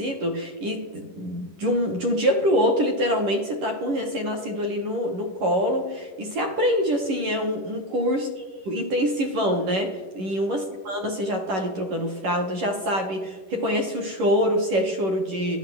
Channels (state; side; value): late; left; 11 ms